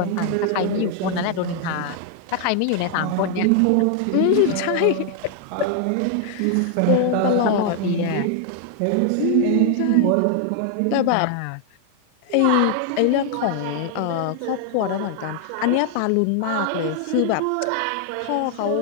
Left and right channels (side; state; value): both; different; correlation 0.00